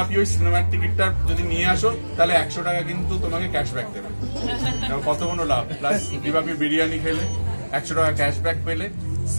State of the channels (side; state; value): both; inverted; correlation -1.00